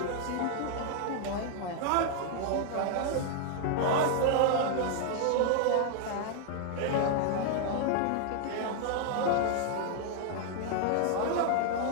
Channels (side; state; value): both; different; correlation 0.00